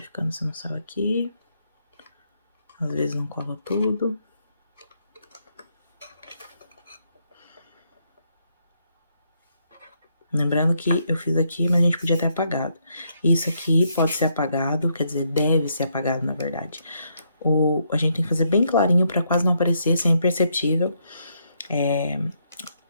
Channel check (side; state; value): both; inverted; correlation -0.76